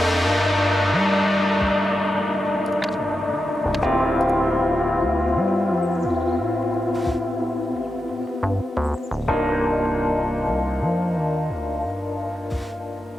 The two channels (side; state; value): both; normal; correlation 0.89